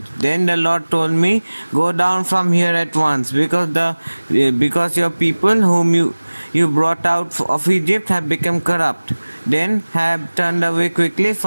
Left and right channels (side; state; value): both; inverted; correlation -1.00